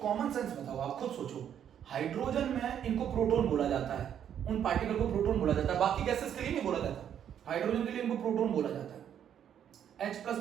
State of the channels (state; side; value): quieter; left; 9.3 dB